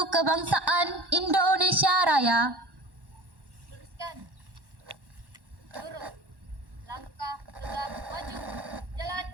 kebangsaan Indonesia Raya. Luruskan, lurus, langkah tegap maju, jalan.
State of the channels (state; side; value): late; left; 1.1 ms